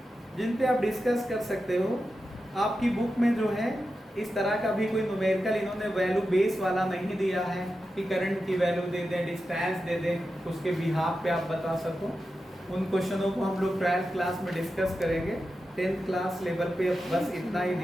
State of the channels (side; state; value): both; normal; correlation 0.91